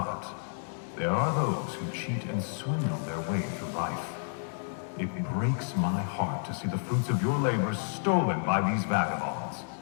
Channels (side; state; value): right; silent; digital silence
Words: there are those who cheat and swindle their way through life. It breaks my heart to see the fruits of your labor stolen by these vagabonds.